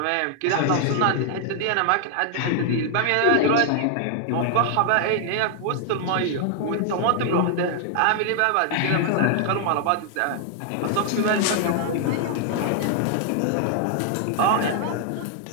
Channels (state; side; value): different; both; correlation 0.00